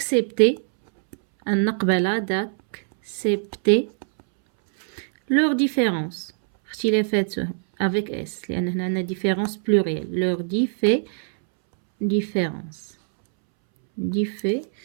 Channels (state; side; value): silent; left; 63 dB below the other